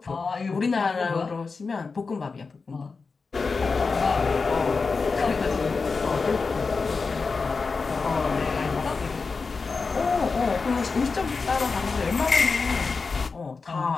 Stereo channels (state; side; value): quieter; right; 4.5 dB